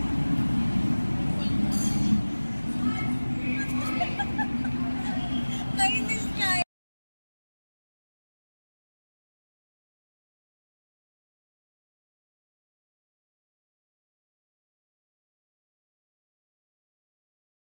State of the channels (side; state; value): both; inverted; correlation -1.00